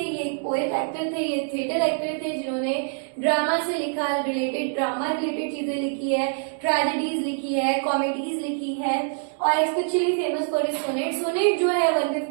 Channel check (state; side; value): silent; left; 62 dB below the other